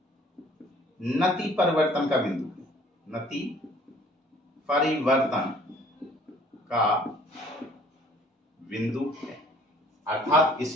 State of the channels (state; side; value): normal; both; correlation 0.56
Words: नति परिवर्तन का बिंदु, नति परिवर्तन का बिंदु है। अर्थात